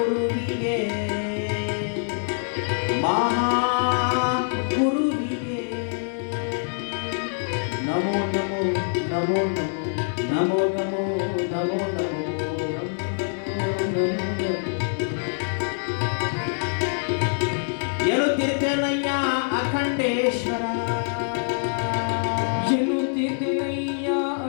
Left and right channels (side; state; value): right; silent; digital silence